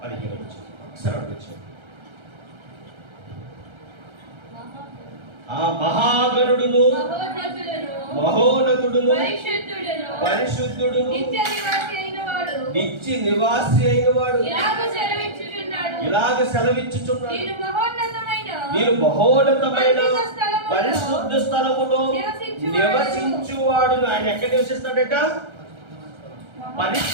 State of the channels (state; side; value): late; left; 1.3 ms